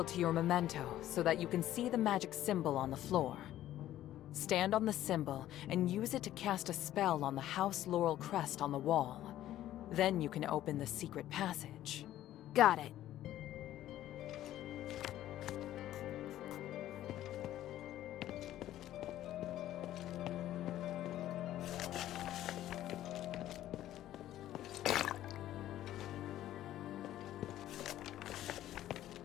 to your memento so that you can see the magic symbol on the floor. Stand on the symbol and use it to cast a spell on the House Laurel crest on the wall. Then you can open the secret passage. Got it.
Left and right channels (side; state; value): right; quieter; 13.2 dB